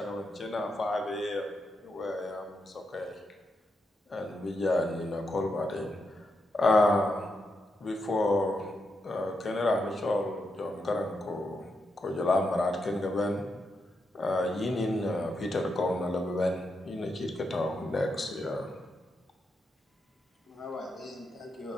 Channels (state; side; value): normal; both; correlation 0.83